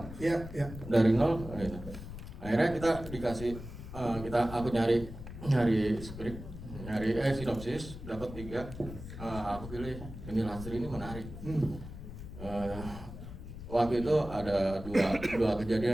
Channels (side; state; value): left; noise; rumble, 11 dB below the sound